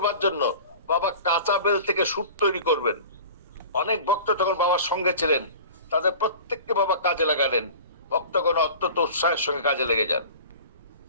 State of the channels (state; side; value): inverted; both; correlation -0.40